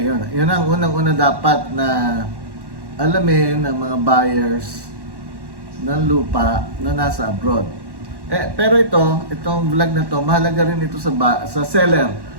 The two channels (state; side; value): late; left; 1.1 ms